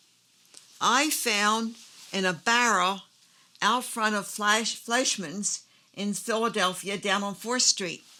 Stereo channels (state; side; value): identical; both; correlation 1.00